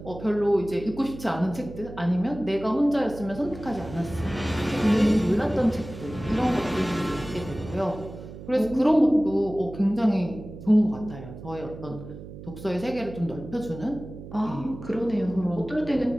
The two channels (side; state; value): right; noise; hum, 13 dB below the sound